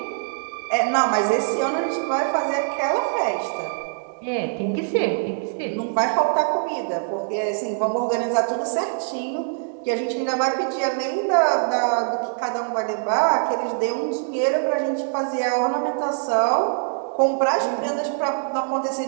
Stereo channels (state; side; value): silent; left; digital silence